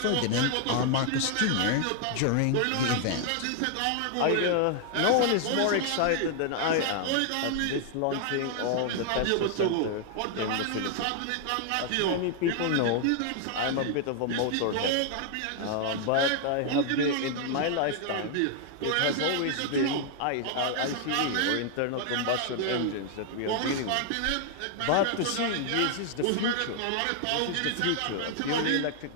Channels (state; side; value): different; both; correlation 0.00